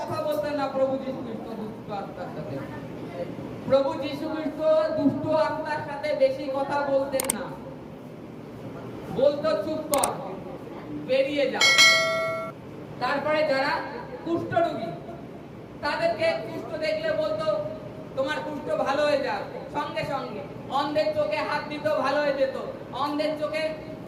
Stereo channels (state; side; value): identical; both; correlation 1.00